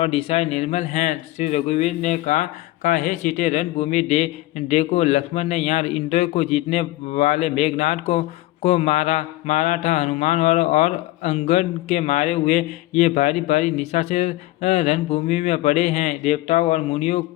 दिशाएं निर्मल हैं। श्री रघुवीर ने कहा हे सीते, रणभूमि देखो, लक्ष्मण ने यहाँ इंद्र को जीतने वाले मेघनाथ को मारा था। हनुमान और अंगद के मारे हुए ये भारी भारी निशाचर रणभूमि में पड़े हैं। देवताओं और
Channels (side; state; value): right; quieter; 17.8 dB